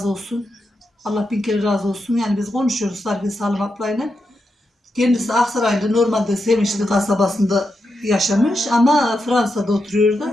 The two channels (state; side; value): normal; both; correlation 0.86